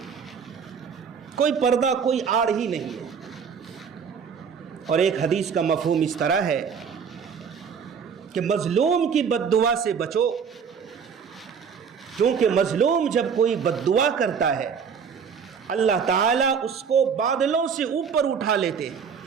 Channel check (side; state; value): left; quieter; 6.6 dB